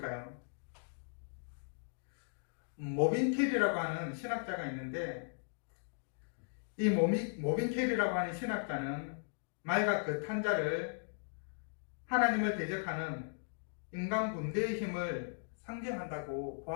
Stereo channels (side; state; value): right; silent; digital silence